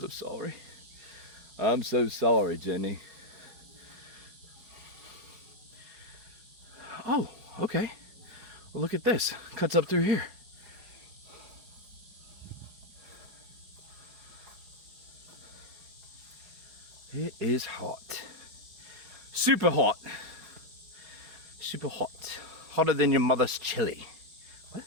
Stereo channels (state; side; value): late; left; 5.0 ms